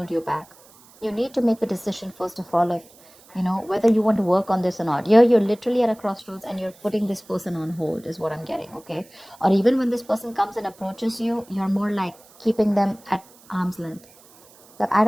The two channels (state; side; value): noise; right; hiss, 26 dB below the sound